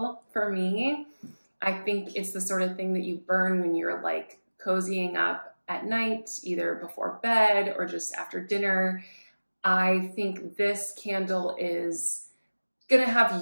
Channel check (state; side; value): inverted; both; correlation -1.00